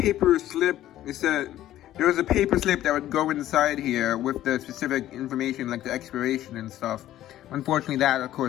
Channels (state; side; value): quieter; right; 13.3 dB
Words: slip. It said there was a paper slip that would go inside here with the specific information, like the expiration and stuff. Unfortunately, that, of